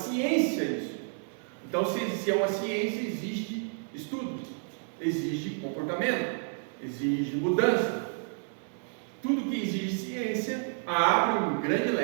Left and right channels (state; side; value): silent; left; 58 dB below the other